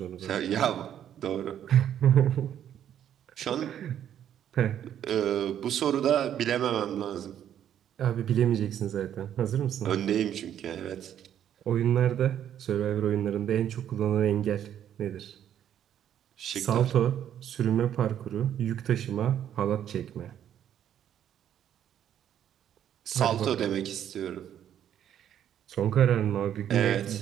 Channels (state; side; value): quieter; left; 10.1 dB